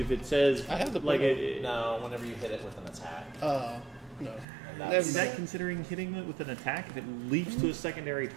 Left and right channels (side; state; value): left; drops out; at 4.5 s